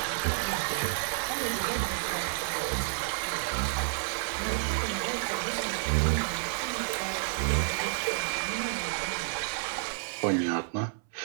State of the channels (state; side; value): silent; left; 58 dB below the other